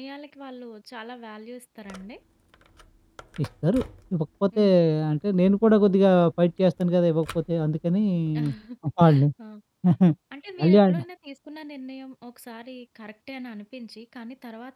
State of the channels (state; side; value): identical; both; correlation 1.00